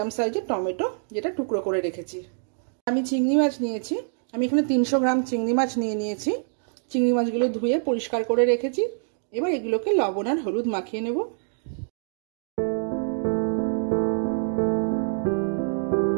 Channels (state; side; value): silent; left; digital silence